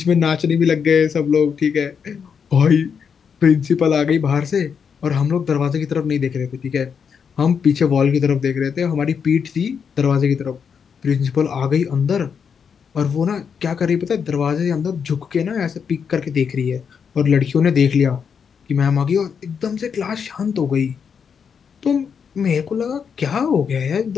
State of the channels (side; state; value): right; quieter; 6.7 dB